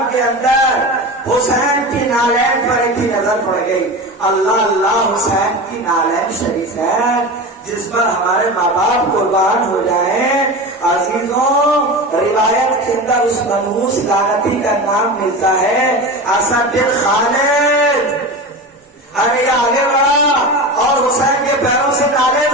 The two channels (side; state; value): both; normal; correlation 0.27